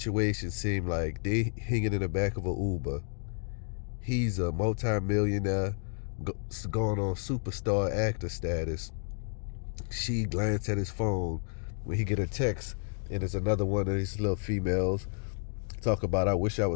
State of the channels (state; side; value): silent; right; digital silence